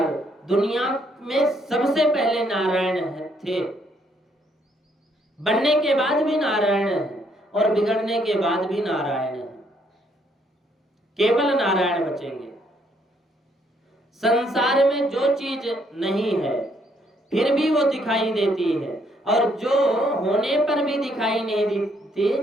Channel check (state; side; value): normal; both; correlation 0.70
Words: दुनिया में सबसे पहले नारायण थे, बनने के बाद भी नारायण है और बिगड़ने के बाद भी नारायण है। केवल नारायण बचेंगे। संसार में जो चीज नहीं है फिर भी वो दिखाई देती है, और जो होने पर भी दिखाई नहीं देती